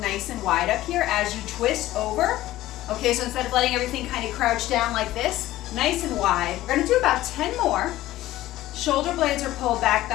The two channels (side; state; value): right; quieter; 15.5 dB